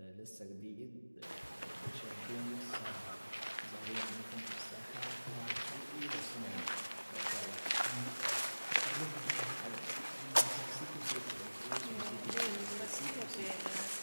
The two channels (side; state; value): both; inverted; correlation -1.00